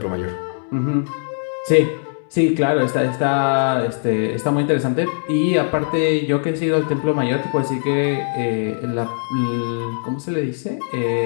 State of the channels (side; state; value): right; silent; digital silence